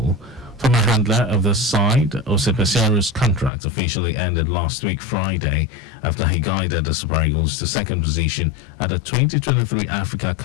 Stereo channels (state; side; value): drops out; right; at 3.5 s